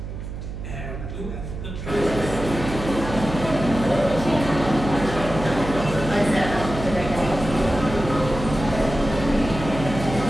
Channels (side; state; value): right; noise; hum, 8 dB below the sound